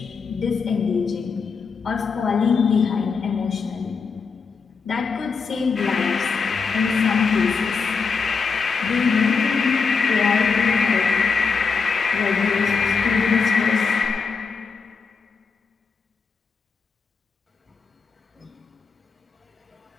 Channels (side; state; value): right; quieter; 5.2 dB